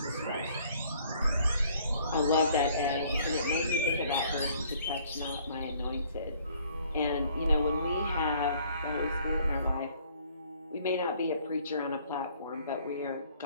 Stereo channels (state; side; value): inverted; both; correlation -0.59